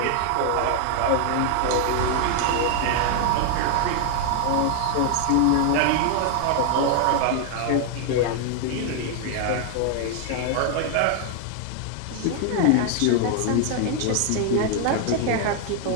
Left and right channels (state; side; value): different; both; correlation 0.00